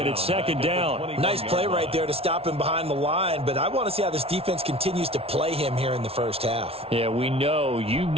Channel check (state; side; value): late; left; 0.28 ms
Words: it's second down. Nice play right there to stop him behind the line, but I want to see how this defense continues to play him here in the first half. Yeah, we know. You